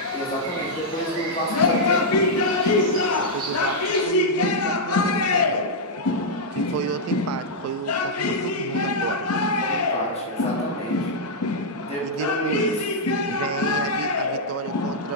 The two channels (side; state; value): both; normal; correlation -0.05